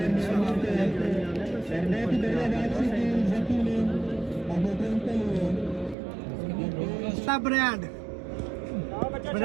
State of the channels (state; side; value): drops out; left; at 6.0 s